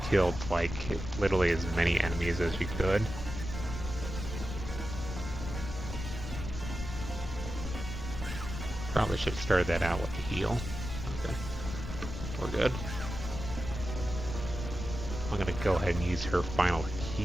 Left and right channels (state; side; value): noise; left; rumble, 7 dB below the sound